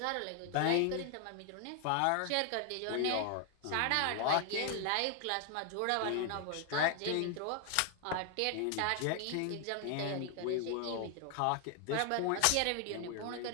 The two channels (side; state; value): both; different; correlation 0.00